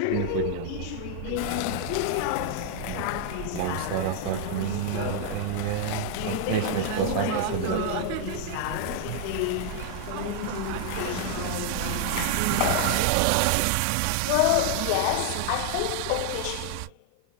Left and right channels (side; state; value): both; different; correlation 0.00